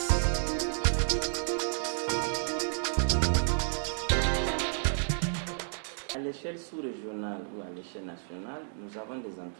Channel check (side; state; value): left; silent; digital silence